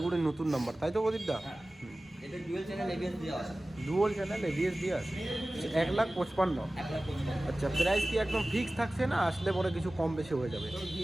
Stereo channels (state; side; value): normal; both; correlation 0.97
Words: নতুন নাম্বার, তাই তো প্রদীপ দা? হ্যাঁ, এটা ডুয়েল চ্যানেল ABS দেওয়া আছে। ডুয়াল চ্যানেল ABS দিয়ে আছে। 1,55,000। 1,55,000। আচ্ছা, প্রাইস কি একদম ফিক্স থাকছে না আসলে পরে কিছু কম বেশি হয়ে যাবে? তো